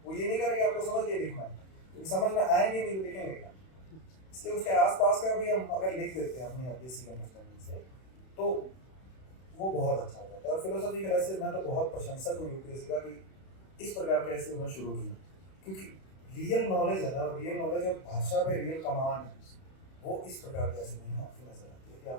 वो ये नहीं करेगा आपको समझ के लिखना है, क्योंकि समझ में आएंगे नहीं तो लिखेंगे क्या। इसलिए उसके आसपास का भी हम अगर लिख देते हैं अपनी बेसिक अंडरस्टैंडिंग से तो वो बहुत अच्छा होता है। और फिलोसॉफी के ऐसे मैं तो बहुत प्रशंसक हूँ यूपीएससी का कि इस प्रकार के ऐसे उन्होंने शुरू किया, क्योंकि रियल नॉलेज है ना, रियल नॉलेज और भाषा पे रियल कमांड है, वो इस प्रकार के ऐसे नहीं आपकी नजर आती है कि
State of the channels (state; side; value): late; right; 31 ms